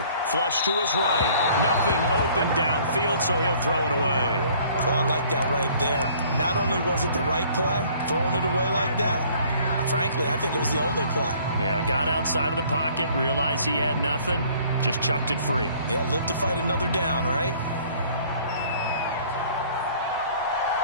flush to his right. Nothing open downfield, so he'll throw it away. Oh, I like that right there. Not only was it the right play, throwing it away like that, frankly, I think it was the only play. Yeah, got outside of the pocket, realized he had nothing, just chucked it free. Yeah, live to fight another down, right?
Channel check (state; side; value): inverted; both; correlation -0.56